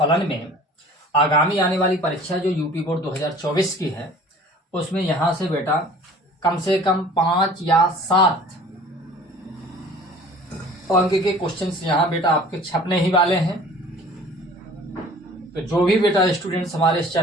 में आगामी आने वाली परीक्षा जो यूपी बोर्ड 2024 की है, उसमें यहाँ से बेटा कम से कम 5 या 7 अंक के क्वेश्चंस यहाँ बेटा आपके छपने ही वाले हैं। तो जो भी बेटा स्टूडेंट्स हमारे इस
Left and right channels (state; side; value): normal; both; correlation 0.47